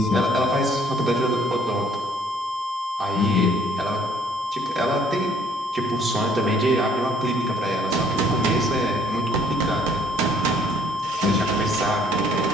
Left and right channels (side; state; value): both; normal; correlation 0.61